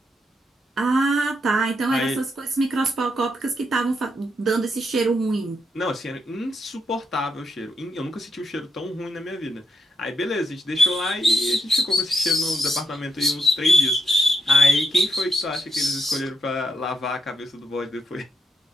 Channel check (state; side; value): normal; both; correlation 0.80